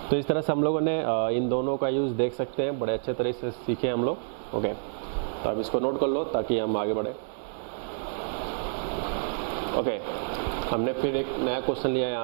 तो इस तरह से हम लोगों ने इन दोनों का यूज़ देख सकते हैं, बड़े अच्छे तरह से सीखे हम लोग। ओके, तो अब इसको नोट कर लो ताकि हम आगे बढ़े। ओके, हमने फिर एक नया क्वेश्चन लिया है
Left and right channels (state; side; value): silent; left; digital silence